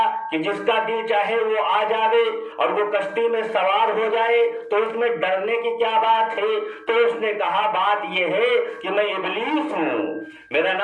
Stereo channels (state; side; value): identical; both; correlation 1.00